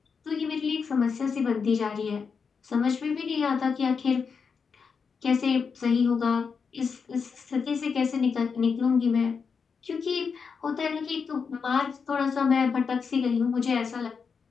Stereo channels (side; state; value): right; quieter; 5.7 dB